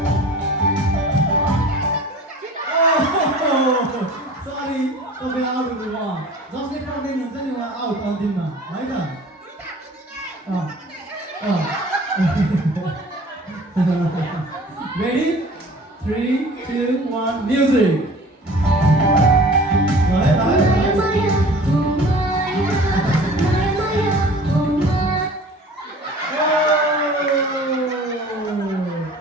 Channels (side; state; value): both; normal; correlation 0.45